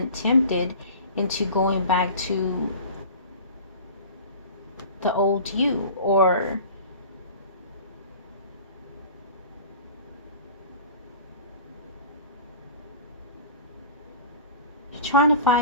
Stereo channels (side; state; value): both; inverted; correlation -0.40